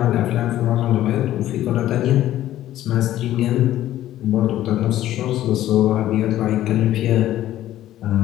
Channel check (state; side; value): quieter; right; 13.4 dB